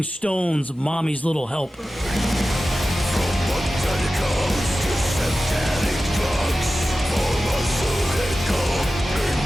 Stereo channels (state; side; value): normal; both; correlation 0.94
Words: Stones' Mommy's Little Helper.